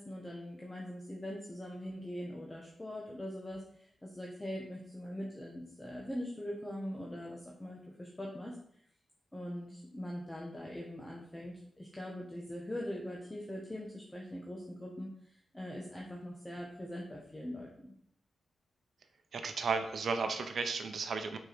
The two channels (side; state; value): both; normal; correlation 0.88